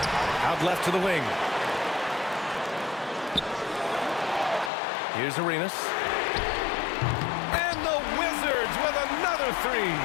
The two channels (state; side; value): drops out; right; at 4.7 s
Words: Out left to the wing. Here's Arenas. And the Wizards with another three.